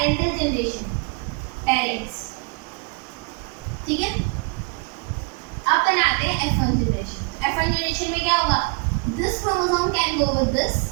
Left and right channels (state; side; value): quieter; left; 32.7 dB